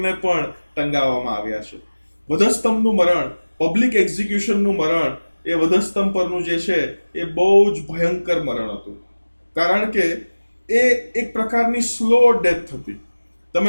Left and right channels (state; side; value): inverted; both; correlation -1.00